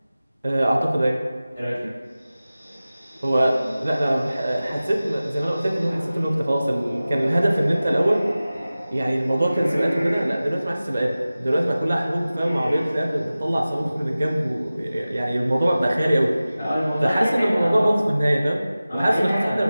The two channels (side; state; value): both; inverted; correlation -0.96